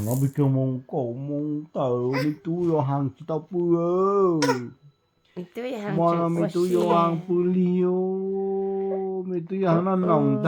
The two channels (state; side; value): identical; both; correlation 1.00